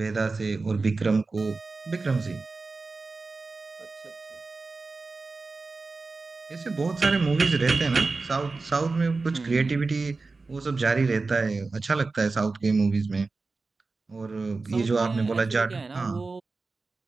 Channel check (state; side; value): quieter; left; 3.9 dB